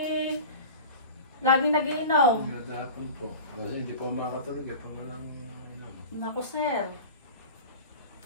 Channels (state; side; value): inverted; both; correlation -0.36